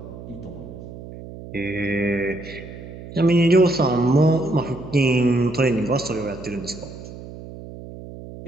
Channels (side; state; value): right; noise; hum, 14 dB below the sound